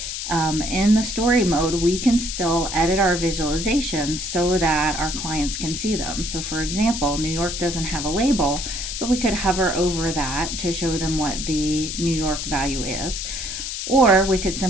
in the story mode, we can still edit our visualizations so that our clients can see them. So for example, New York doesn't have a label, but we could hover over that to show them what the New York value is. Or we could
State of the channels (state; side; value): noise; left; hiss, 5 dB below the sound